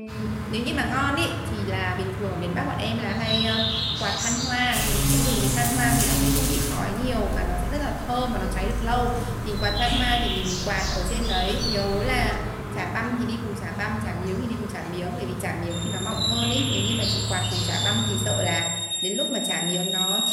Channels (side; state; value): both; identical; correlation 1.00